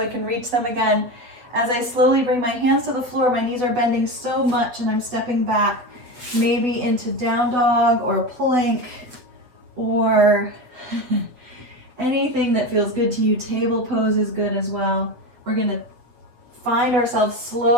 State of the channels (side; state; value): left; late; 8.2 ms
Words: can reach them again. As I slowly bring my hands to the floor, my knees are bending so much and I'm stepping back, maybe into down dog or plank or anything that feels good to you. Table pose is good as well. We're going to find ourselves